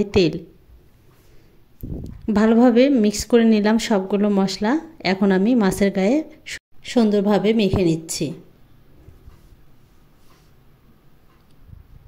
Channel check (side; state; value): both; identical; correlation 1.00